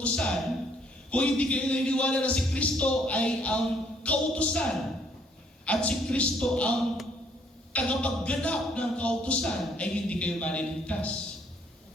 kung hindi kayo naniniwala na si Kristo ay ang kautusan at si Kristo ang tagapagganap ng kautusan, ay hindi kayo maliligtas.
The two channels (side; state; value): both; normal; correlation 0.65